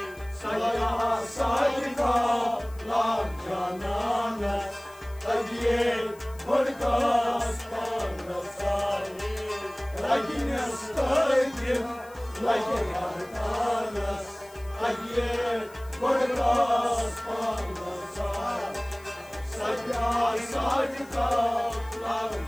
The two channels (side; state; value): left; noise; hiss, 25 dB below the sound